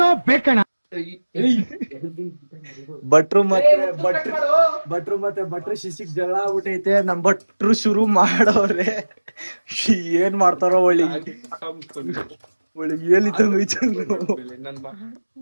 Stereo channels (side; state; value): both; inverted; correlation -1.00